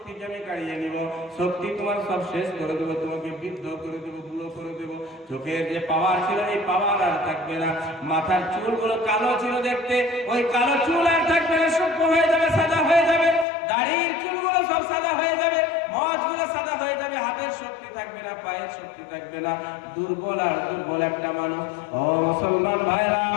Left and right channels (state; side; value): drops out; right; at 13.5 s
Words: আমি কাড়িয়ে নিব। শক্তি তোমার সব শেষ করে দেব, তোমাকে বৃদ্ধ করে দেব, বুড়ো করে দেব। চোখের যে পাওয়ার ছিল এই পাওয়ার আর থাকবে না। মাথার চুলগুলো কালো ছিল দেখতে, ওই কালো চুল আর থাকবে না, সূক্ষ্ম হয়ে যাবে, সাদা হয়ে যাবে। দাড়ির চুলগুলো সব সাদা হয়ে যাবে, মচগুলো সাদা হয়ে যাবে। হাতের শক্তি থাকবে না, পায়ের শক্তি থাকবে না। দুর্বল আর দুর্বল একটা মানুষ। ও মুসলমান ভাইরা